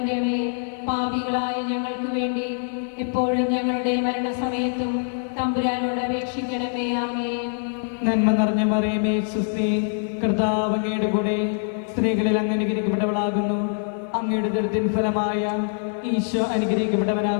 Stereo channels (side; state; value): right; silent; 63 dB below the other